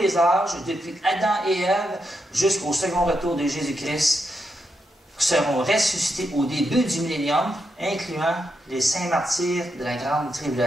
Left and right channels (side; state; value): both; normal; correlation 0.83